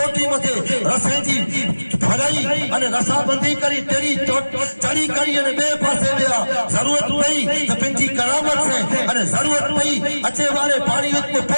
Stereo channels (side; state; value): both; inverted; correlation -1.00